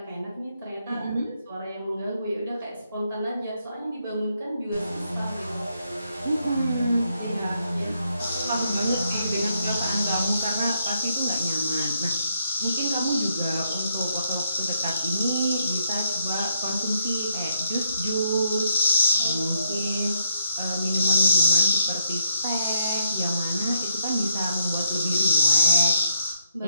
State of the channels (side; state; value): both; inverted; correlation -0.76